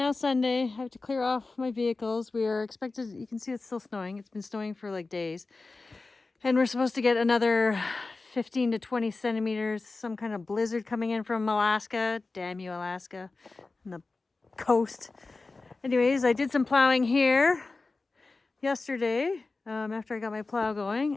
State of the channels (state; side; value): quieter; right; 3.6 dB